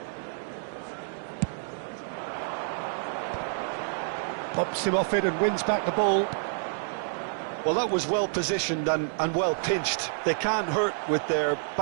Pops him off it and wins back the ball. Well, that was well positioned and well pinched. They can't hurt with their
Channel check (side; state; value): left; silent; digital silence